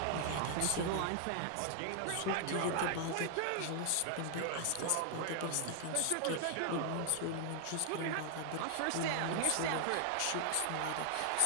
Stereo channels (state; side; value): different; both; correlation 0.00